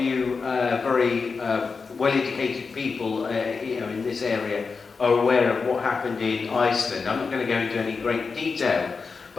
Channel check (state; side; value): quieter; right; 4.8 dB